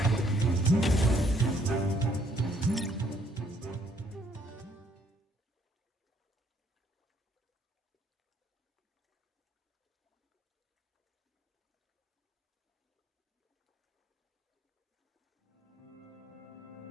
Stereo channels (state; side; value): normal; both; correlation 0.67